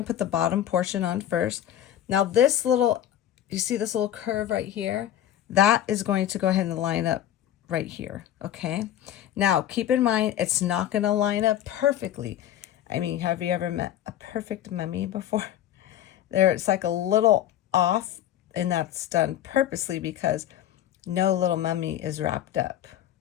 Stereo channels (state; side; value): quieter; right; 11.5 dB